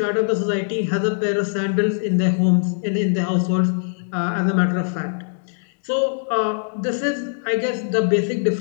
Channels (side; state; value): right; silent; digital silence